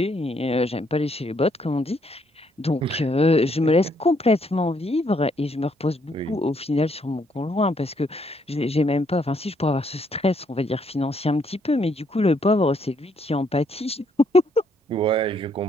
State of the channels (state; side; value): normal; both; correlation 0.71